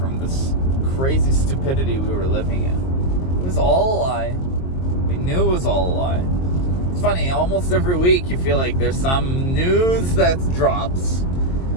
this crazy stupidity we were living in. It was all a lie. We knew it was all a lie. It's funny, almost every week you feel like there's some news that drops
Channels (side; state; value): right; late; 22 ms